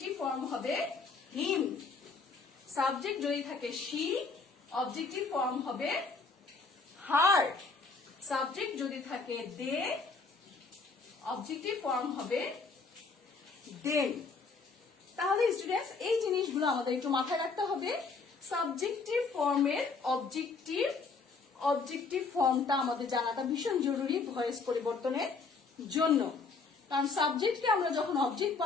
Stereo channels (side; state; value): right; quieter; 4.4 dB